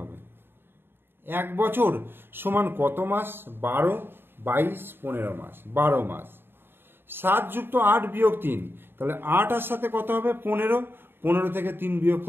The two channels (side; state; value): left; late; 0.10 ms